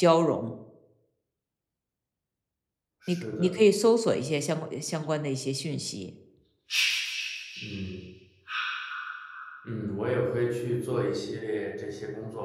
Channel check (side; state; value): both; identical; correlation 1.00